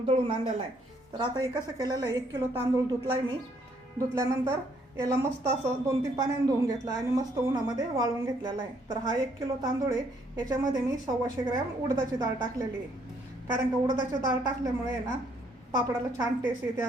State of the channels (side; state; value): both; normal; correlation 0.68